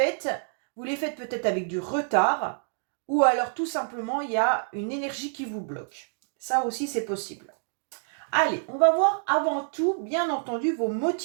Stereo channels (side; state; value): left; silent; digital silence